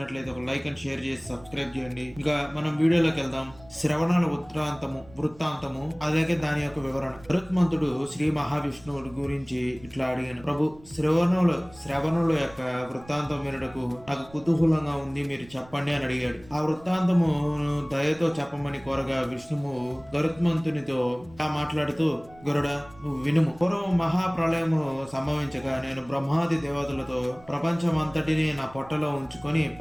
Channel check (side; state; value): right; noise; rumble, 22 dB below the sound